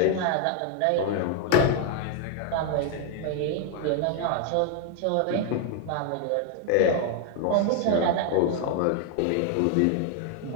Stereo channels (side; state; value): both; different; correlation 0.00